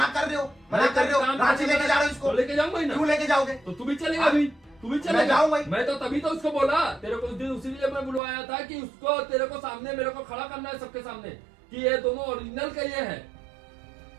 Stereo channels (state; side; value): drops out; left; at 8.2 s